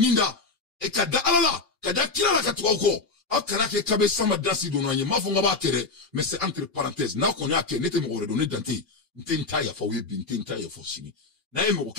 et kada alala, kada kila la katuako, a kana ke kabe sama dansi donanye, ma fonga ba kere, mais c'est entre parenthèses, na konya ke nete mo redonner dante, nte ntaya fa webi, nte ntaya fa sini. Na yeme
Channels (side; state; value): right; quieter; 3.9 dB